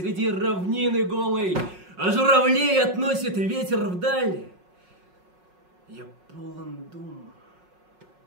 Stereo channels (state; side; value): late; left; 5.5 ms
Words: равнины голой, а журавлей относит ветер вдаль. Я полон дум